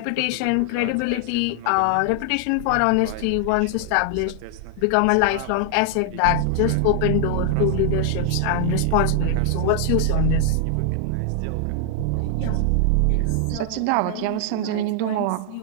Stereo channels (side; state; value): both; different; correlation 0.00